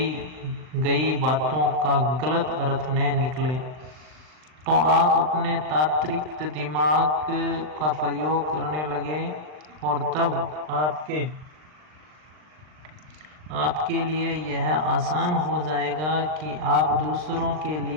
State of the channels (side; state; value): left; late; 39 ms